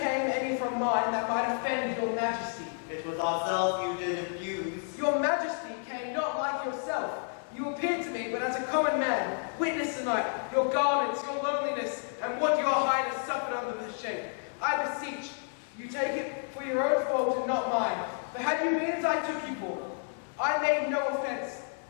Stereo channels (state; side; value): silent; right; 57 dB below the other